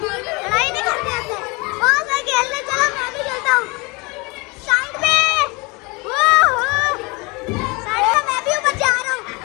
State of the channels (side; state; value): right; quieter; 27.1 dB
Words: लड़ाई नहीं करते होते। बहुत सारे खेलने, चलो मैं भी खेलता हूँ। साइड में, साइड में मैं भी ऊपर जा रहा हूँ।